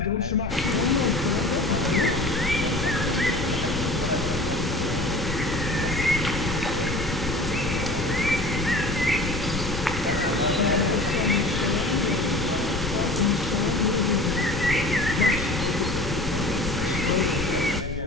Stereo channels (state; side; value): noise; left; rumble, 7 dB below the sound